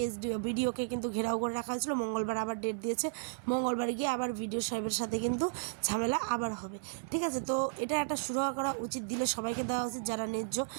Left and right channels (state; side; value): silent; left; 55 dB below the other